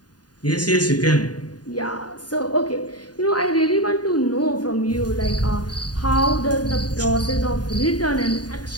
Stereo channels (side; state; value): right; late; 0.69 ms